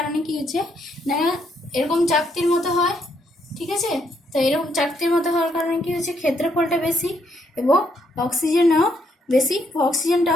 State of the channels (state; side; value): normal; both; correlation 0.73